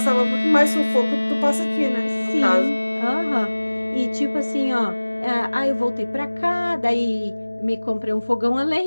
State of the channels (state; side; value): inverted; both; correlation -1.00